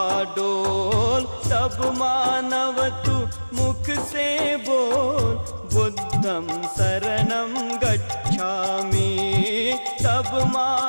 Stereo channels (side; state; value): both; inverted; correlation -1.00